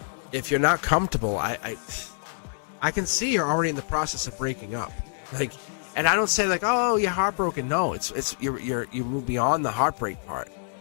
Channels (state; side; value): silent; right; 61 dB below the other